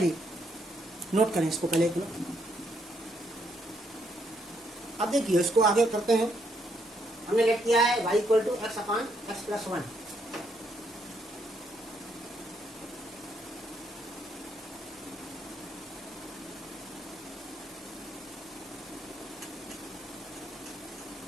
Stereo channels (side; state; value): both; normal; correlation 0.74